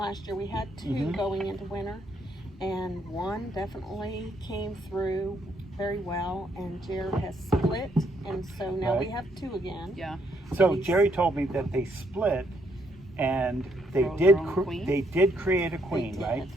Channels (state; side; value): normal; both; correlation 0.72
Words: year. We had two Mhm. going into winter, and one definitely came through very well, and Jared has split, and so now we Right. have two again. Yeah. So Jerry told me that they split, and they Grow did. their own queen? They did create a queen, did. right?